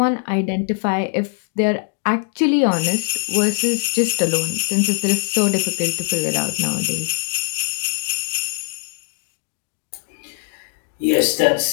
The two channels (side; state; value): right; silent; 58 dB below the other